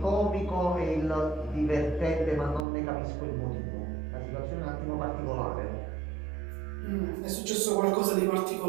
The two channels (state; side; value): drops out; left; at 2.7 s